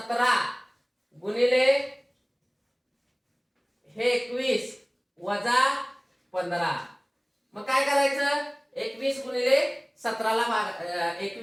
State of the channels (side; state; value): both; identical; correlation 1.00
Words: गुणिले हे 21 वजा 15. मग काय करायचं, 21 गुणिले 17 ला